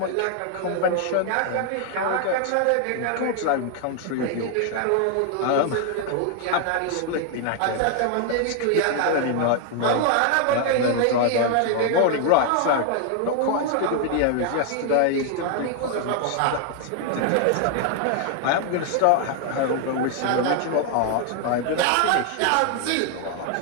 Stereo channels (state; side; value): different; both; correlation 0.00